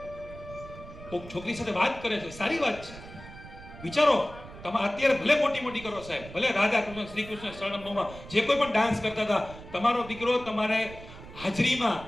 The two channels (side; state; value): right; noise; rumble, 16 dB below the sound